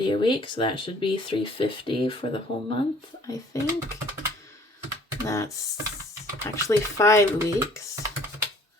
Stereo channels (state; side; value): normal; both; correlation 0.56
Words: a week, so that should be $350 for the whole month, I think. That's actually 5 weeks.